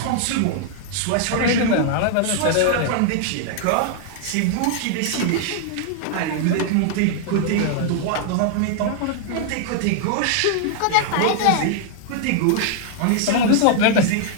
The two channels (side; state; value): both; different; correlation 0.00